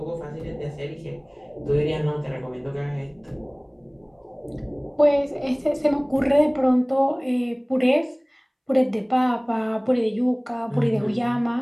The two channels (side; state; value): both; identical; correlation 1.00